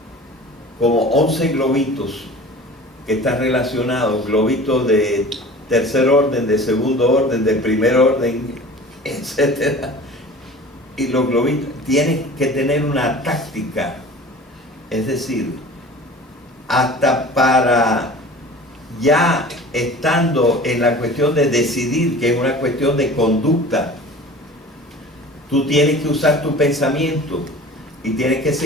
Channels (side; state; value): both; normal; correlation 0.41